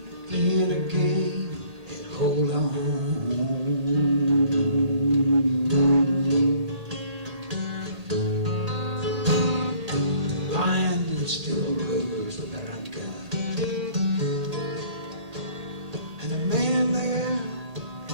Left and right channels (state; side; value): late; left; 1.8 ms